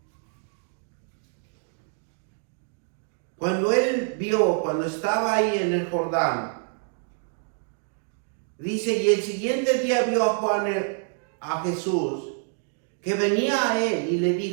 cuando él vio, cuando estaba ahí en el Jordán, dice, y el siguiente día vio a Jesús, que venía a él y le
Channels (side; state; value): left; silent; 57 dB below the other